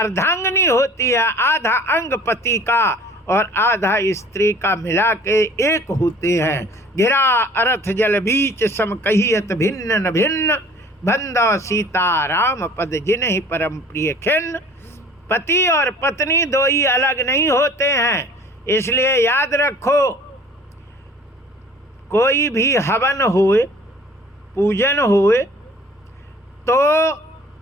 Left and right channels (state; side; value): normal; both; correlation 0.49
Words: होती है, आधा अंग पति का और आधा स्त्री का मिला के एक होते हैं। गिरा अर्थ जल बीच सम कहियत भिन्न न भिन्न, बंदा सीता राम पद जिन्हि परम प्रिय खिन्न। पति और पत्नी दो ही अलग नहीं होते हैं। इसलिए याद रखो, कोई भी हवन होए, पूजन होए, तो